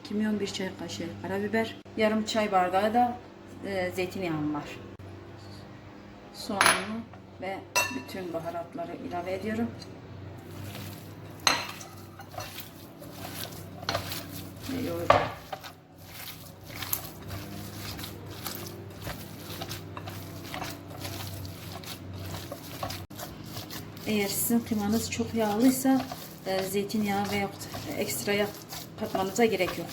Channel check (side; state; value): both; identical; correlation 1.00